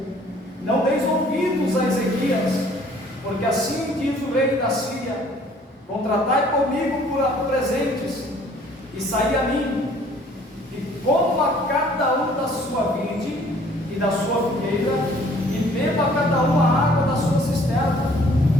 Não deis ouvidos a Ezequias, porque assim diz o rei da Síria: contratai comigo por presentes, e saí a mim, e coma cada um da sua vide e da sua figueira, e beba cada um a água da sua cisterna,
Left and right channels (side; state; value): both; normal; correlation 0.57